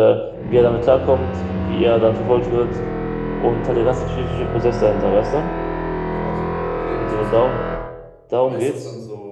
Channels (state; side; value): identical; both; correlation 1.00